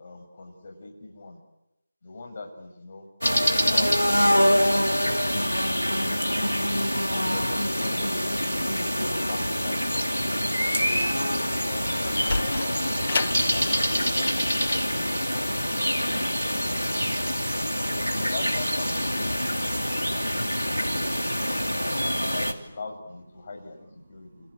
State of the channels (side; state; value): both; inverted; correlation -0.95